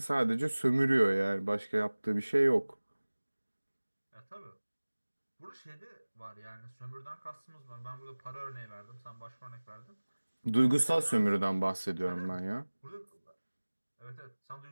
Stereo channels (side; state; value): both; inverted; correlation -1.00